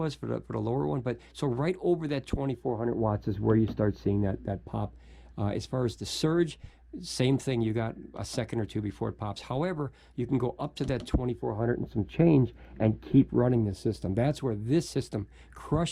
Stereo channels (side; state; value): both; identical; correlation 1.00